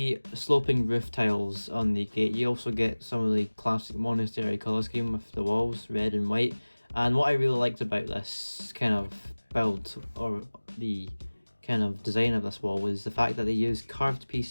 sloping roof tiles on the gate, you also get some of the classic monastery colour scheme with the walls, red and white. And what I really liked about this kind of build, or the kind of design of this wall, was the fact that they used curved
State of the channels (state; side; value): inverted; both; correlation -1.00